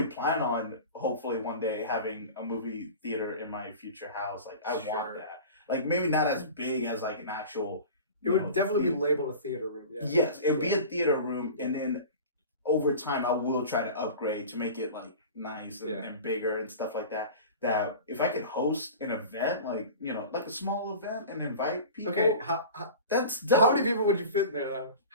plan on, hopefully, one day having a movie theater in my future house. Like, I want that. Like, maybe not as big as, like, an actual... It would definitely be labeled a theater room, yeah. Yes, it would be a theater room, and then over time, I will try to upgrade to make it, like, nice and bigger and stuff like that. That if I could host an event, like, like a small event and invite people... Okay, that's dope. How many people would you fit in there, though?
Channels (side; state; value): both; inverted; correlation -0.35